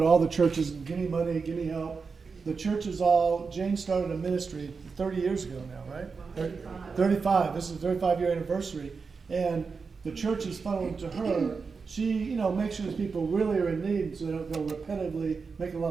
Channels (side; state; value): left; quieter; 5.0 dB